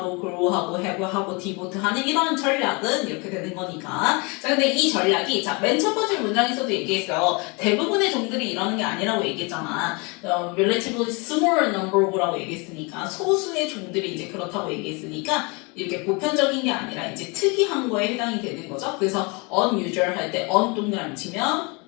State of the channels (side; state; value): right; quieter; 29.5 dB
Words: grow하고 have하고 devote하는 이런 전략은 이렇게 되는 거니까. 자, 근데 이 전략이 맨 첫 번째 문장에서도 얘기했어요. 대부분의 종들이 이러는 게 아니라고 얘기했잖아. relatively small number of라고 얘기했으니까 소수의 종들이 이제 그렇다고 얘기했으니까 이렇게 보편적인 게 아니라 이제 특이한 거에 해당이 되는 거죠. 그래서 unusual 할 때 un 동그라미 치면,